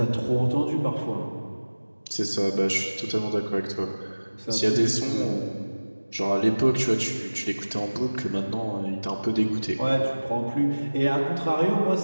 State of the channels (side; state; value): both; inverted; correlation -1.00